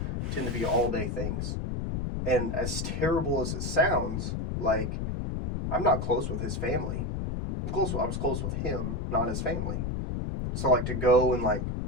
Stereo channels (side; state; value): left; noise; rumble, 2 dB below the sound